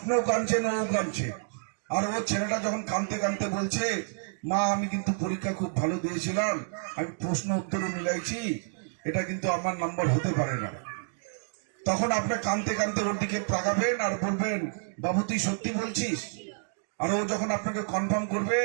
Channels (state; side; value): silent; left; digital silence